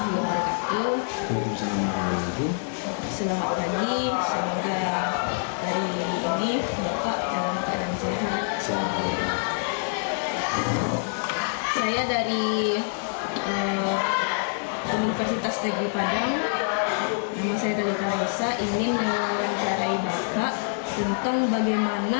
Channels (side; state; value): right; silent; 61 dB below the other